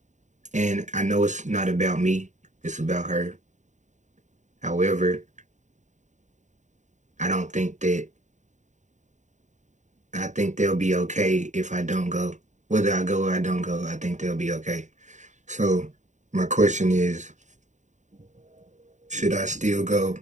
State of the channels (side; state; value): left; late; 0.35 ms